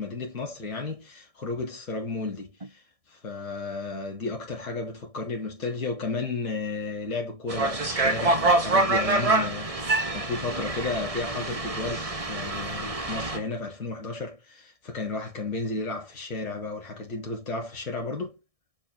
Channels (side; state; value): left; late; 1.6 ms